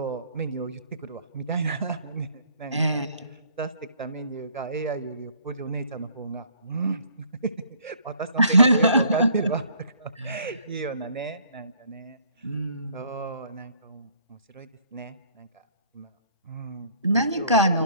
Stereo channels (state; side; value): inverted; both; correlation -0.60